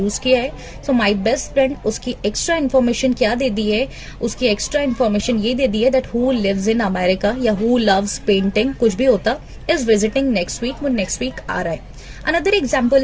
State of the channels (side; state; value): both; identical; correlation 1.00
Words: किया है. सो माई बेस्ट फ्रेंड, उसकी एक्स्ट्रा इन्फॉर्मेशन क्या दे दी है, उसकी एक्स्ट्रा इन्फॉर्मेशन ये दे दी है that who lives in America या हु लव्स पेंटिंग, कुछ भी होता, इज विजिटिंग नेक्स्ट वीक, वो नेक्स्ट वीक आ रहा है. Another example